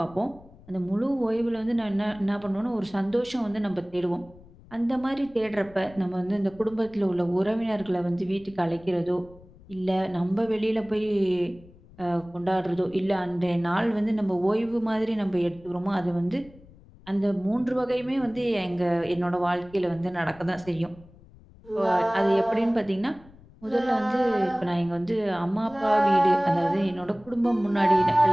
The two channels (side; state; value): left; noise; rumble, 23 dB below the sound